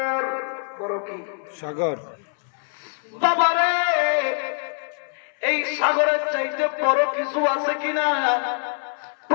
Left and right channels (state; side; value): silent; right; 63 dB below the other